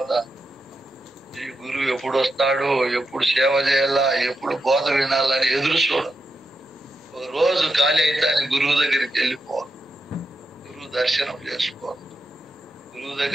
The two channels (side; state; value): both; normal; correlation 0.86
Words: ఈ గురువు ఎప్పుడు వస్తాడు, ఎప్పుడు సేవ చేయాలా, ఎప్పుడు బోధ వినాలని ఎదురు చూడదు. ఒక రోజు ఖాళీ అయితే ఆయన గురువు దగ్గరికి వెళ్ళిపోవాలి, గురువు దర్శనం చేసుకోవాలి, గురువు